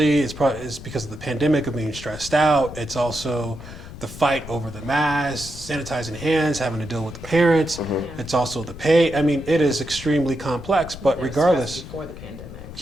it's because of the pandemic of being stressed out. It's also the fight over the masks, sanitizing hands, having to deal with the parents. It's also the pay. I mean, it is extremely complex. But They're regardless. stressed before the pandemic.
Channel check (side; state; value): left; noise; rumble, 14 dB below the sound